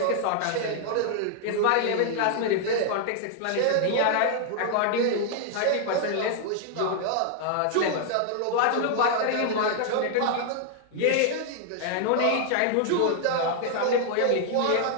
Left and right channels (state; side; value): different; both; correlation 0.00